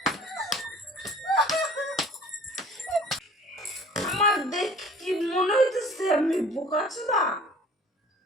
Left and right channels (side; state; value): both; normal; correlation 0.48